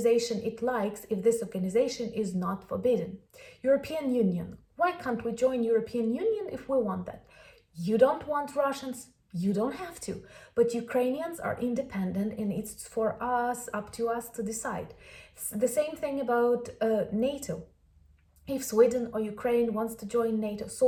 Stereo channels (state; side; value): identical; both; correlation 1.00